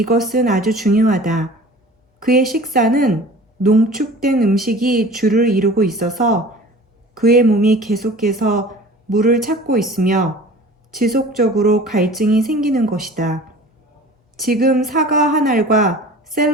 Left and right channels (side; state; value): both; normal; correlation 0.43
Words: 아주 중요하다. 그의 식사는 농축된 음식이 주를 이루고 있어서 그의 몸이 계속해서 물을 찾고 있으며 지속적으로 갈증이 생기는 것이다. 지금 사과 한 알과